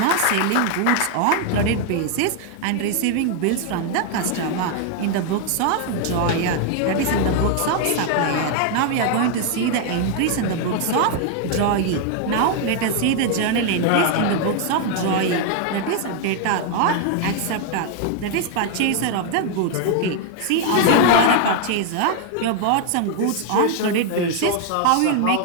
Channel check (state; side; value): different; both; correlation 0.00